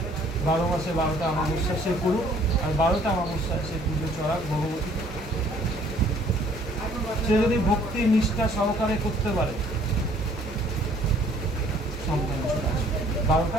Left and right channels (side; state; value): both; normal; correlation 0.59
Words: 12 মাসে 12টা অমাবস্যা সে করুক, আর 12টা অমাবস্যায় সে পুজো চড়াক ভগবতী। সে যদি ভক্তি নিষ্ঠা সহকারে করতে পারে, সন্তান চলে আসবে।